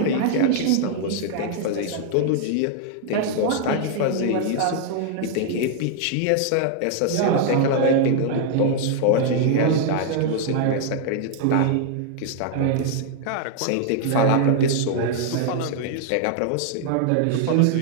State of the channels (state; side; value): different; both; correlation 0.00